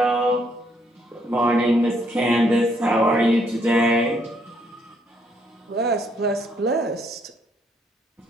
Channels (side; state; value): both; normal; correlation 0.70